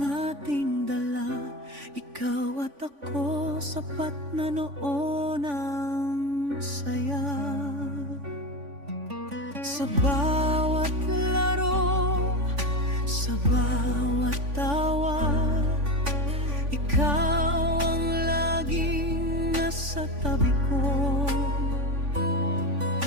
ating dala. Ikaw at ako, sapat na noon ang saya. Sa bawat laro, sa bawat tawa, ikaw ang laging nasa tabi ko.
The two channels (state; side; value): late; left; 3.5 ms